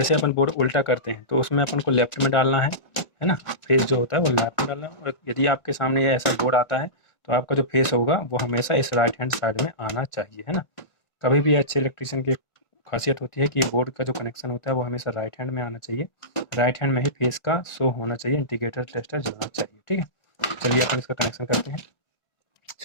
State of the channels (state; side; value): late; right; 1.4 ms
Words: अपन बोर्ड उल्टा करते हैं तो उसमें अपन को लेफ्ट में डालना है ना। फेस जो होता है वो लेफ्ट में डालना है, और यदि आपके सामने ये ऐसा बोर्ड आता है तो आपका जो फेस होगा वो हमेशा इस राइट हैंड साइड में आना चाहिए, है ना। कभी भी अच्छे इलेक्ट्रीशियन की खासियत होती है कि बोर्ड का जो कनेक्शन होता है वो हमेशा राइट हैंड में आना चाहिए। राइट हैंड में ही फेस का शो होना चाहिए, इंडिकेटर टेस्टर जलना चाहिए, ठीक है। चलिए अपन इसका कनेक्शन करते हैं